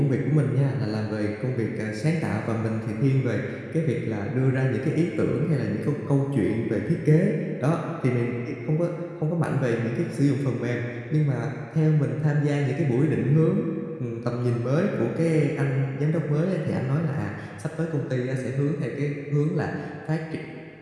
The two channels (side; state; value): both; identical; correlation 1.00